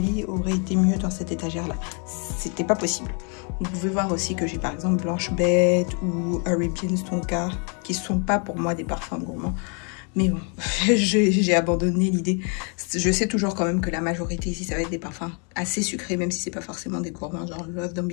aurait été mieux dans cette étagère-là. C'était pas possible. Vous pouvez voir aussi que j'ai par exemple Blanche Bête ou Arabian Tonka, qui sont pas pour moi des parfums gourmands. Mais bon, j'ai abandonné l'idée. Je sais toujours quand même que la majorité ici, ça va être des parfums assez sucrés, même si c'est pas forcément des gourmands. Genre Love Don't Be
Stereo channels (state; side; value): quieter; right; 37.8 dB